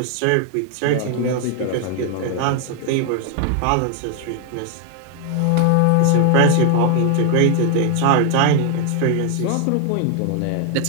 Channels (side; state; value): both; different; correlation 0.00